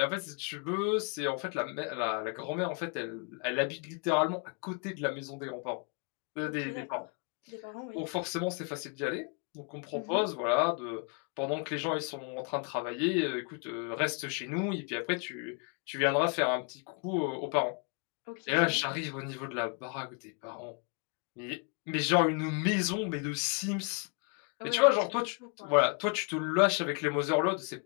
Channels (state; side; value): quieter; right; 35.5 dB